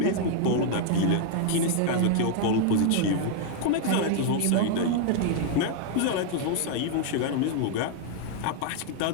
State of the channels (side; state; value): both; different; correlation 0.00